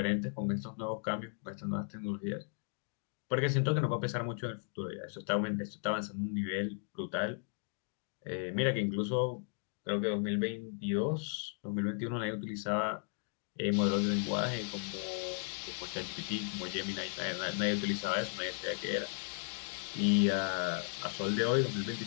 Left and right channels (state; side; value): silent; right; 54 dB below the other